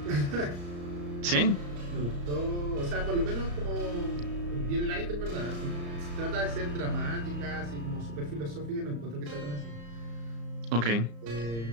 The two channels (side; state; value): left; late; 34 ms